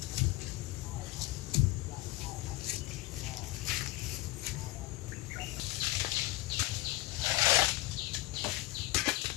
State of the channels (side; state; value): right; quieter; 19.8 dB